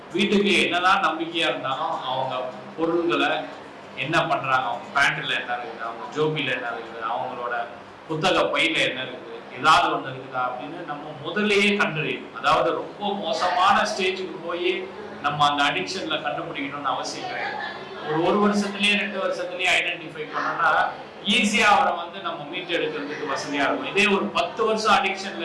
வீட்டுக்கு என்னதான் நம்பிக்கையாக இருந்தாலும் அவங்க பொருள்களை என்ன பண்ணுறாங்க, அவங்க பேண்ட்டில் என்ன இருக்குது, அவங்க ஜோபியில் என்ன இருக்குது, அவங்களோட புத்தக பையில் என்ன இருக்குது, ஏதாவது ஒன்று இருக்குதா அப்படின்னு நம்ம முதல்லையே கண்டறியும். அதாவது ரொம்ப மோசமான ஸ்டேஜுக்கு போய் நம்ம அந்த அடிக்ஷனில் கண்டுபிடிக்கணும்னு அவசியம் கிடையாது. ஒரு வருஷத்துலேயே 2 வருஷத்துலேயே ஐடென்டிஃபை பண்ணோம்னா ஈஸியாக அவரை நம்ம மீட்டு எடுக்கிறதுக்கு வசதியாக இருக்கும். இதே ஒரு 10 வருஷம்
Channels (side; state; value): both; identical; correlation 1.00